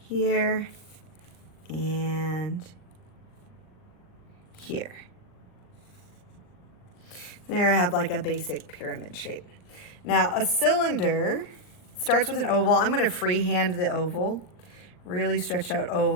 and here. There I have like a basic pyramid shape. Now a cylinder starts with an oval. I'm going to freehand the oval. Really stretch out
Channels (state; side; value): late; right; 39 ms